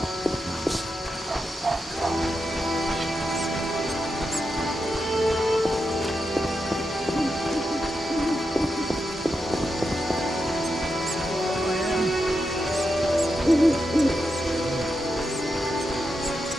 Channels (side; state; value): both; normal; correlation 0.87